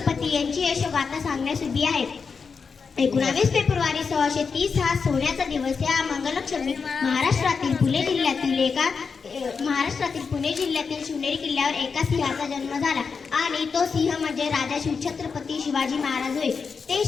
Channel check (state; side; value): quieter; right; 5.4 dB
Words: यांची यशोगाथा सांगण्यास उभी आहे. 19 फेब्रुवारी 1630 हा सोन्याचा दिवस. या मंगलक्षमी महाराष्ट्रातील पुणे जिल्ह्यातील शिवनेरी किल्ल्यावर एका सिंहाचा जन्म झाला आणि तो सिंह म्हणजे राजा शिवछत्रपती शिवाजी महाराज होय. ते